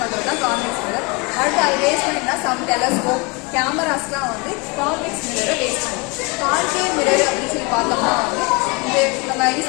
பண்றது தான் கான்வெக்ஸ் மிரர். அடுத்து அது பேஸ் பண்ணினா சம் டெலஸ்கோப் கேமராஸ்லாம் வந்து கான்வெக்ஸ் மிரரை பேஸ் பண்ணும். கான்கேவ் மிரர் அப்படின்னு சொல்லி பார்த்தோம்னா வந்து இது நம்ம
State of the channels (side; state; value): right; quieter; 28.2 dB